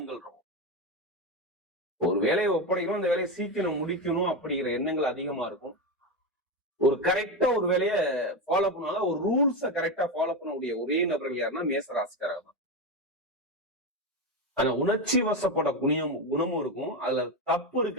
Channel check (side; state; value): both; normal; correlation 0.14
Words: இருக்கும். ஒரு வேலையை ஒப்படைக்கணும், அந்த வேலையை சீக்கிரம் முடிக்கணும் அப்படிங்கிற எண்ணங்கள் அதிகமா இருக்கும். ஒரு கரெக்டா ஒரு வேலையை ஃபாலோ பண்ணுவாங்க, ஒரு ரூல்ஸை கரெக்டா ஃபாலோ பண்ணக்கூடிய ஒரே நபர்கள் யாருன்னா மேசராசிக்காரங்க தான். ஆனா உணர்ச்சி வசப்பட குணமும் இருக்கும். அதுல தப்பு